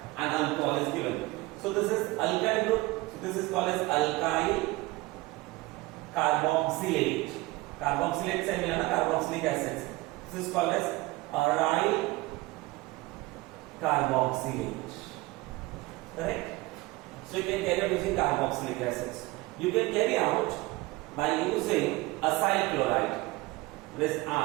and alcohol is given. So this is alkyl group. So this is called as alkyl carboxylate. Carboxylate से मिला ना carboxylic acids. This is called as aryl carboxylate. Correct? So you can carry out using carboxylic acids. You can carry out by using acyl chloride. This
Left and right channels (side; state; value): left; quieter; 21.0 dB